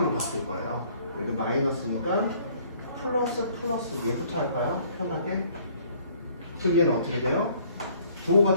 바꿀 거예요. 여기 마이너스니까 플러스 플러스 얘부터 할까요? 편하게. 그럼 얘는 어떻게 돼요? 부호가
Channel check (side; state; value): both; inverted; correlation -0.59